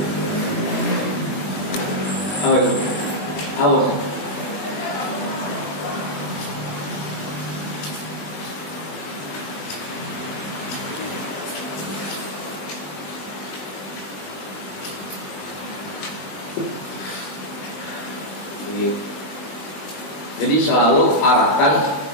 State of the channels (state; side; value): late; right; 20 ms